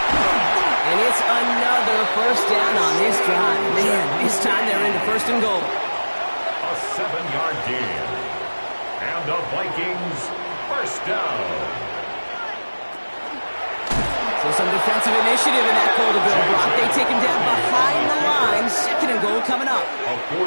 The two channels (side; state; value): both; inverted; correlation -1.00